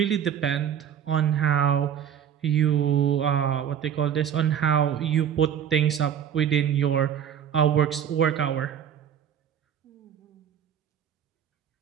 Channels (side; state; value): left; quieter; 8.9 dB